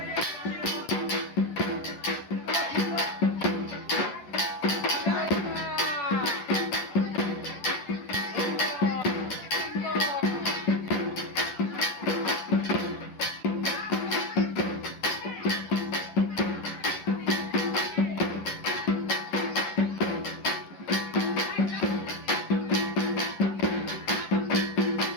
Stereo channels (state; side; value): late; right; 10 ms